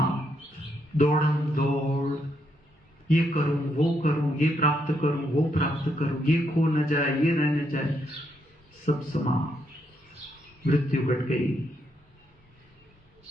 दौड़म दौड़, ये करूं वो करूं, ये प्राप्त करूं वो प्राप्त करूं, ये खो न जाए ये रह न जाए, सब समाप्त। मृत्यु घट गई,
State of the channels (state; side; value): normal; both; correlation 0.77